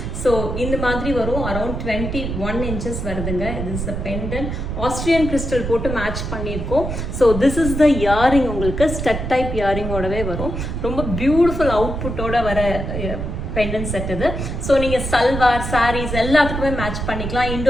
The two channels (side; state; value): right; noise; rumble, 4 dB below the sound